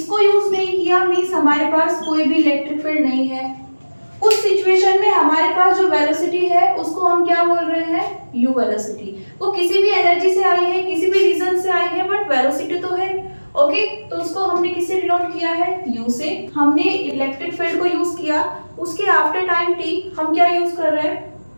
यूज नहीं किया मींस हमारे पास कोई भी इलेक्ट्रिक फील्ड नहीं है, उस सिचुएशन में हमारे पास जो वेलोसिटी है उसको हम क्या बोल रहे हैं, u वेलोसिटी। वो किसी भी एनर्जी से आई है, किसी भी रीजन से आई है, बट वेलोसिटी तो है। ओके, तो उसको हमने किससे डिनोट किया है, u से। हमने इलेक्ट्रिक फील्ड को यूज किया, उसके आफ्टर टाइम t हम क्या यूज कर रहे हैं,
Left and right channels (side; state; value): both; inverted; correlation -1.00